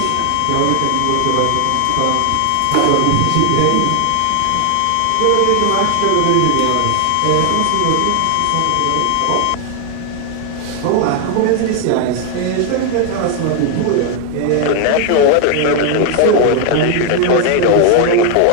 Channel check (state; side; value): different; both; correlation 0.00